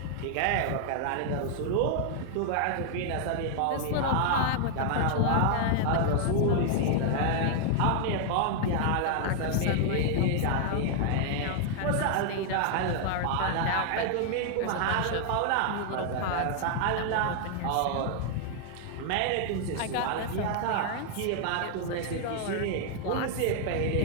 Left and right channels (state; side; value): different; both; correlation 0.00